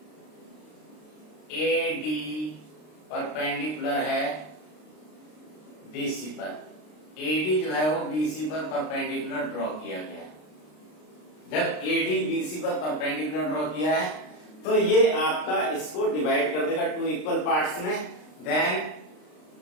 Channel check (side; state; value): right; late; 33 ms